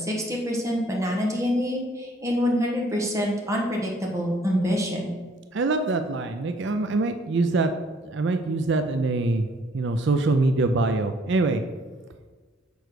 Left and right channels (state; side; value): normal; both; correlation 0.62